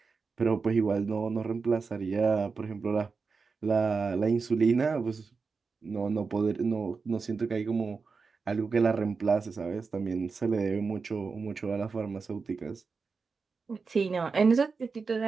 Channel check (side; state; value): left; quieter; 4.8 dB